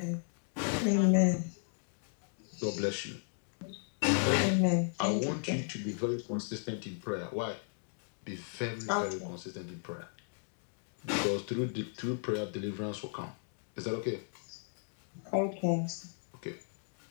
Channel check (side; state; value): right; silent; 54 dB below the other